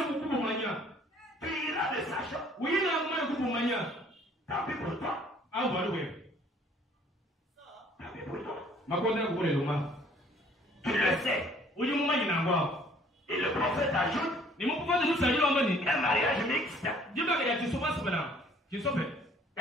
Tu iras le sachant. Tant pis pour toi. Tant pis pour toi. Tu le sais. Et le prophète ajoute un mariage mixte.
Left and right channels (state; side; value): normal; both; correlation 0.57